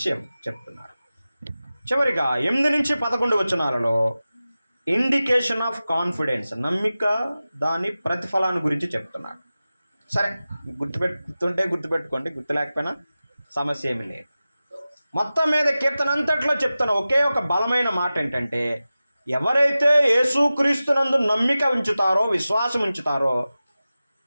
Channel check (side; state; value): both; inverted; correlation -0.95